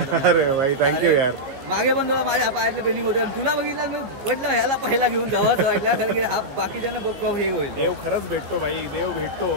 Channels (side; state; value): left; late; 15 ms